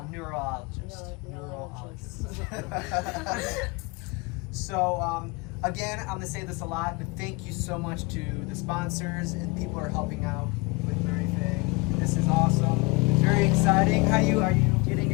neurologist. So again, I'm gonna say this a lot, but thank you so much to the sponsors and people who are helping out with everything. This is awesome. It's very exciting. Are you getting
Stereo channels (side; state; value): right; quieter; 26.7 dB